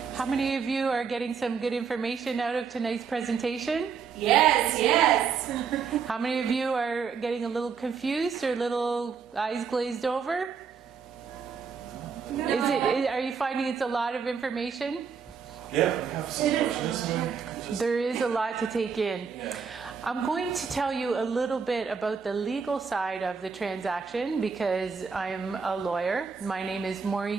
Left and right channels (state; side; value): quieter; left; 6.1 dB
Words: How many of you are getting some good information out of tonight's presentation? Yes, yes. How many of you are getting a little confused or little eyes glazed over? No. Are you finding it's a lot of information? Yeah, I have some questions. There is a lot to take in. I'm going to tell you a little bit about the legal side of the transaction because I'm a lawyer. My name is